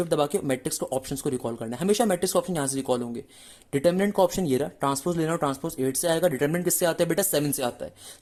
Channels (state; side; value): identical; both; correlation 1.00